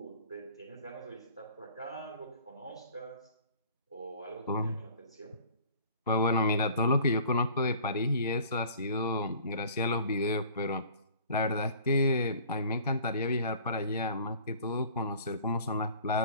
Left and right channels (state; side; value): inverted; both; correlation -0.49